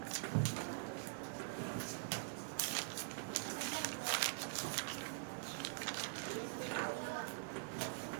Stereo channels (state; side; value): silent; left; digital silence